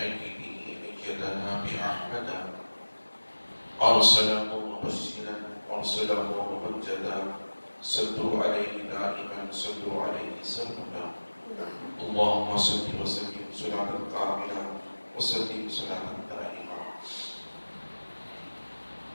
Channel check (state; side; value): inverted; both; correlation -1.00